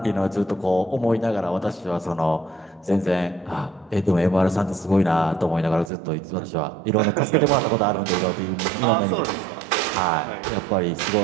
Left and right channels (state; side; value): drops out; left; at 5.9 s